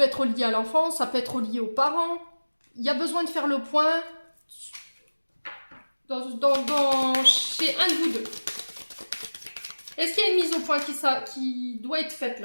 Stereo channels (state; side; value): inverted; both; correlation -1.00